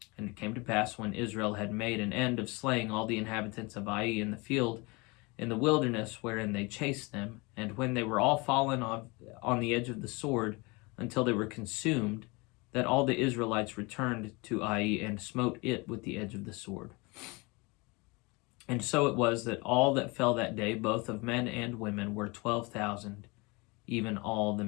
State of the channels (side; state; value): right; quieter; 26.6 dB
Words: And it came to pass, when Israel had made an end of slaying all the inhabitants of Ai in the field, in the wilderness wherein they chased them, and when they were all fallen on the edge of the sword, until they were consumed, that all the Israelites returned to Ai and smote it with the edge of the sword. And so it was that all that fell that day, both of men and women, were 12,000, even all the